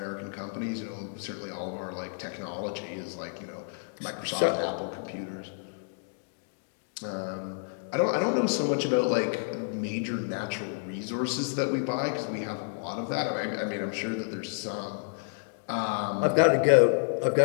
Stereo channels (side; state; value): right; silent; digital silence